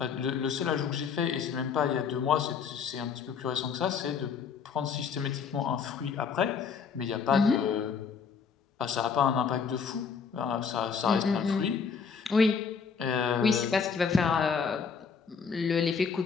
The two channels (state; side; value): quieter; right; 6.0 dB